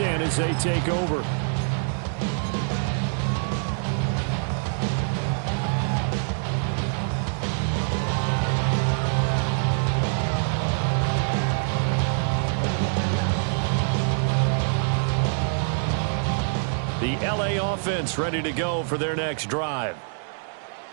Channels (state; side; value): silent; left; 62 dB below the other